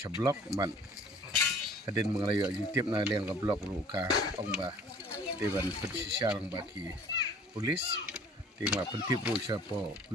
man kadin mengelayu YouTube na liang ke blok luka ong ba dewan persisial bagi polis tinggal pentip ru siapa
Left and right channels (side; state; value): both; normal; correlation 0.51